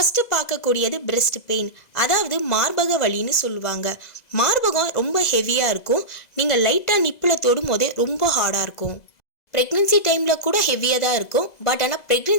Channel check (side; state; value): right; late; 2.0 ms